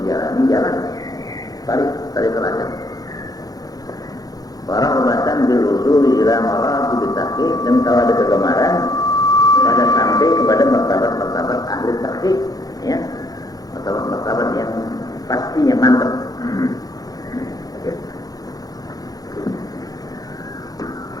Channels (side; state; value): right; late; 0.18 ms